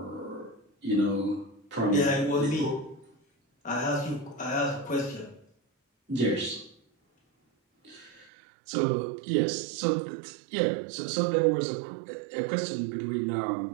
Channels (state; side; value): drops out; left; at 8.3 s